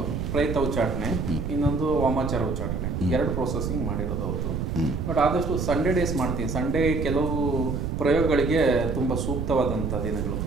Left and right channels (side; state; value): right; noise; rumble, 2 dB below the sound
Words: ಪ್ರಯತ್ನ ಉಚ್ಚಾಟನೆ, ಇನ್ನೊಂದು ವಾಮಾಚಾರ ಉಚ್ಚಾಟನೆ, 2 ಪ್ರೋಸೆಸಿಂಗ್ ಮಾಡಿರೋದು ಅವತ್ತು. ಬಟ್ ಆದಷ್ಟು ಸಂಡೇ ಡೇಸ್ ಮಾಡ್ತೀನಿ. ಸಂಡೇ ಕೆಲವು ಪ್ರಯೋಗಗಳಿಗೆ ತುಂಬ ಸೂಕ್ತವಾದಂಥ ದಿನಗಳು.